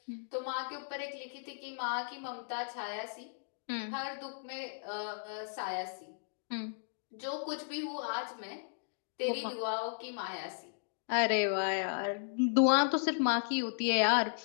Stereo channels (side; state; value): right; silent; digital silence